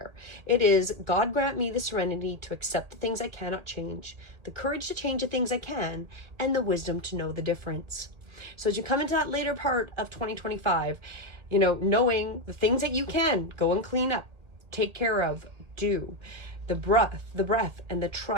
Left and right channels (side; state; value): left; late; 1.6 ms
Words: It is, God grant me the serenity to accept the things I cannot change, the courage to change the things I can, and the wisdom to know the difference. So as you come into that later part of 2025, knowing the things that you can go and clean up, take care of, do, the breath and the